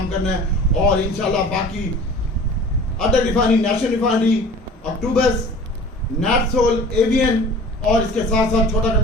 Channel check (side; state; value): both; normal; correlation 0.44